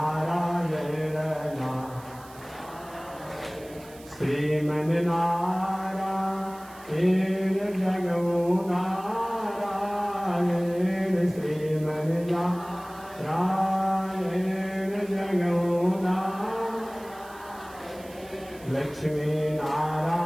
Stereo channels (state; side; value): noise; right; hiss, 22 dB below the sound